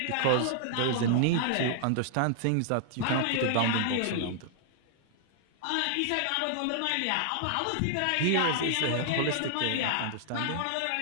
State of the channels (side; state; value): both; different; correlation -0.01